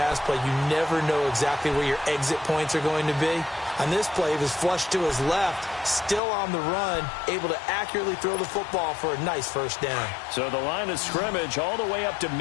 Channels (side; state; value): right; drops out; at 6.2 s